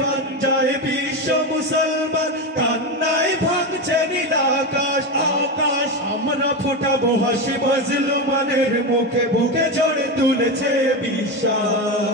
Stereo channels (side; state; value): both; normal; correlation 0.16